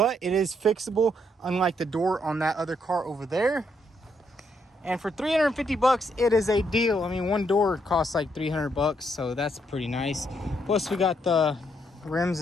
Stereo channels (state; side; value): normal; both; correlation 0.74